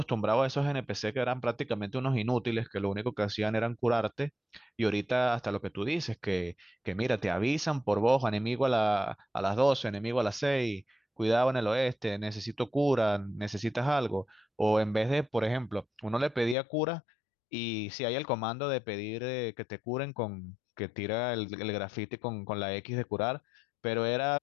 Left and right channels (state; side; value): drops out; right; at 16.6 s